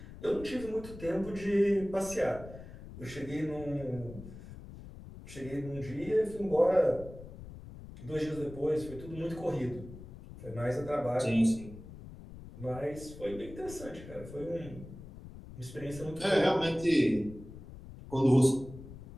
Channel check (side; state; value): left; noise; rumble, 15 dB below the sound